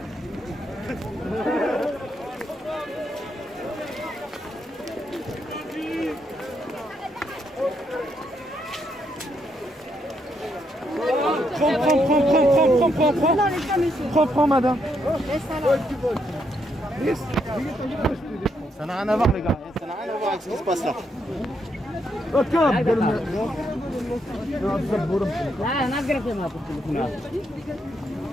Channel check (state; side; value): normal; both; correlation 0.77